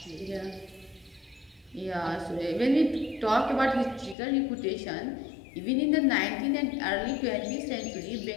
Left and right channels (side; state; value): right; drops out; at 4.2 s